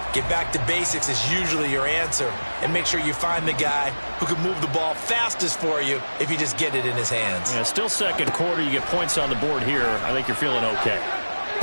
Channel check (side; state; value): both; inverted; correlation -1.00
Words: Get back to basics is usually your answer. And make sure you find the guy who can move the ball fastest for you if you just get it in his hands. Yeah, still second quarter. You get points on the board here. I think you're feeling okay.